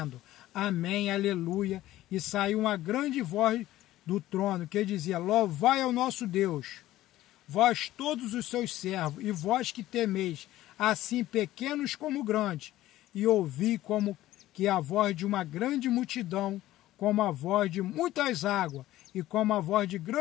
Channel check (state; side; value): quieter; right; 15.1 dB